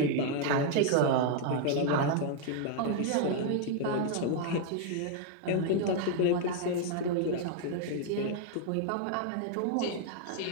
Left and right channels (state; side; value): different; both; correlation 0.00